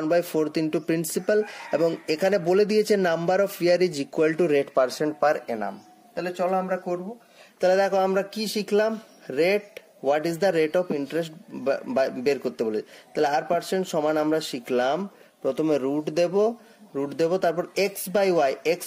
ইন্টু প্রিন্সিপাল, এবং এখানে বলে দিয়েছে number of year is equal to rate percent per annum. তাহলে চলো আমরা করব। তাহলে দেখো আমরা কি শিখলাম, rate, what is the rate of interest বের করতে বলে। তাহলে R% সমান আমরা শিখলাম, প্রথমে রুট দেব, তারপর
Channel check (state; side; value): identical; both; correlation 1.00